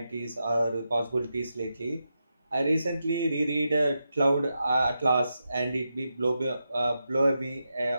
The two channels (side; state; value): both; inverted; correlation -0.87